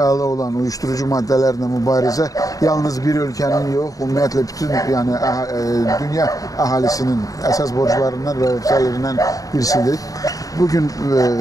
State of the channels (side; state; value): right; late; 0.17 ms